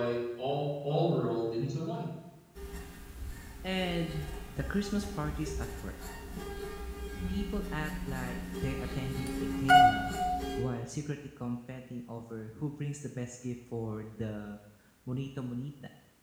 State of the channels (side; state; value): both; identical; correlation 1.00